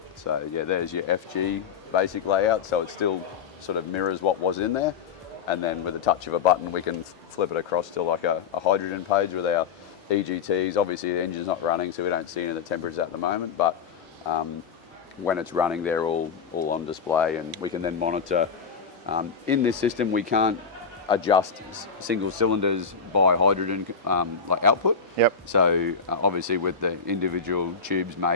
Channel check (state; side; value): quieter; right; 5.9 dB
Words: So yeah, there's your FG basic layout. So it still sort of mirrors what was in there. And then with a touch of a button, we can flip it across to like a hydrogen page with our EGTs. Obviously the engine's not running, so we don't see any of the temperatures at the moment, but when it's running, they're all on display, and we can then monitor. In this system, we can't adjust single cylinders by hydrogen like output. Yep. So obviously with the individual tubes